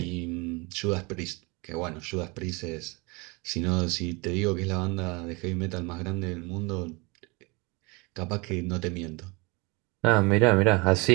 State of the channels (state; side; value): quieter; left; 27.2 dB